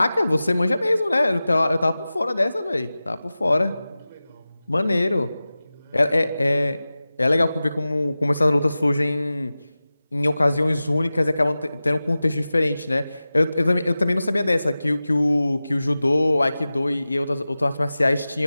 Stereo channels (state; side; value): inverted; both; correlation -0.96